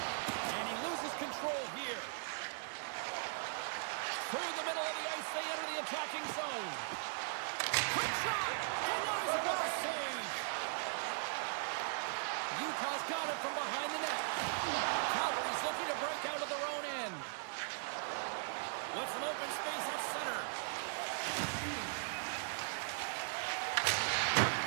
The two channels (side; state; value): left; silent; 52 dB below the other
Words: And he loses control here. Through the middle of the ice, they enter the attacking zone. Quick shot! Denies it with a save! Utah's got it from behind the net. Calgary's looking to break out of their own end. With some open space at center.